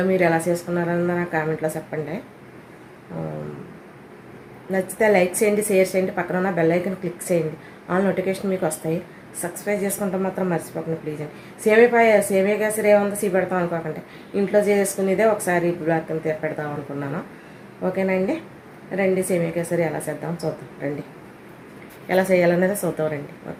మీరు ఎలా చేసుకున్నారని నా కామెంట్లో చెప్పండి. నచ్చితే లైక్ చేయండి, షేర్ చేయండి, పక్కన ఉన్న బెల్ ఐకాన్ క్లిక్ చేయండి. ఆల్ నోటిఫికేషన్ మీకు వస్తాయి. సబ్స్క్రైబ్ చేసుకుంటే మాత్రం మర్చిపోకండి ప్లీజ్ అండి. సేమియా కేసరి ఏముందో పెడతాం అనుకోకండి, ఇంట్లో చేసుకునేదే ఒకసారి బ్లాక్ కింద పెడదాం అనుకున్నాను. ఓకేనా అండి, రండి సేమియా కేసరి ఎలా చేద్దాం చూద్దాం. రండి, ఎలా చేయాలనేది చూద్దాం రండి.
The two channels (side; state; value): both; identical; correlation 1.00